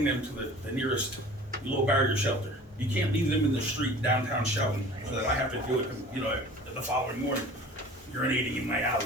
them to the nearest low barrier shelter. You can't leave them in the street downtown shouting so that I have to do it, the following morning, urinating in my alley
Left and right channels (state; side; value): normal; both; correlation 0.43